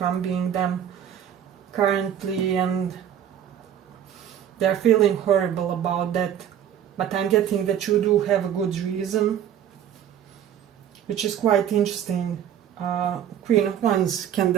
them currently, and they're feeling horrible about that. But I'm getting that you do have a good reason, which is quite interesting. Queen of Wands can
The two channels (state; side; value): quieter; left; 9.7 dB